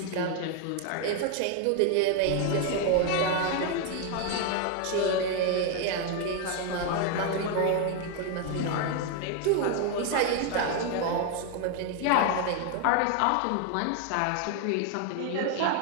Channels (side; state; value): both; different; correlation 0.01